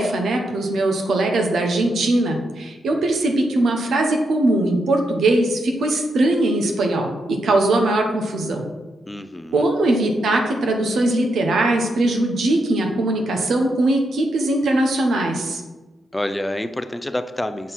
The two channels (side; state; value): both; normal; correlation 0.82